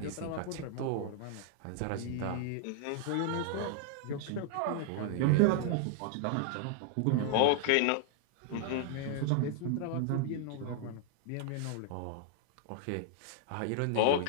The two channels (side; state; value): both; different; correlation 0.00